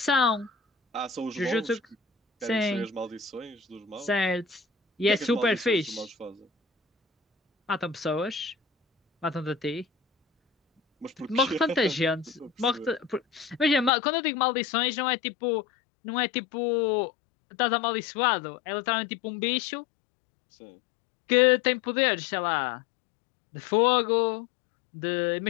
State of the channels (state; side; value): drops out; right; at 13.9 s